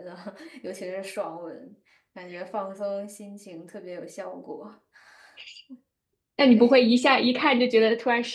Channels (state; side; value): identical; both; correlation 1.00